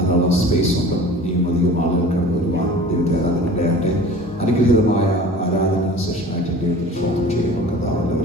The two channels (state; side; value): normal; both; correlation 0.42